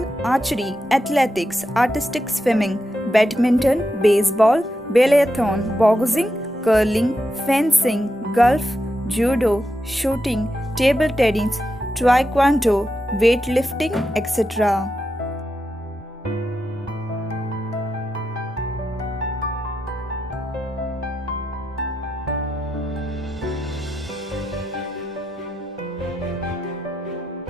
archery, athletics, artistic swimming, badminton, baseball, biathlon, boxing, curling, fencing, golf, judo, shooting, table tennis, taekwondo, weightlifting, etc.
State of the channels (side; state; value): both; normal; correlation 0.86